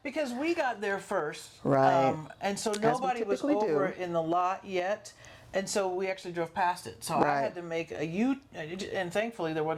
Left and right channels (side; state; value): both; identical; correlation 1.00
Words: because we got there first, Right. and so nobody was typically over do. in the lot yet, and so we actually drove past it. So I Right. had to make a U, and thankfully there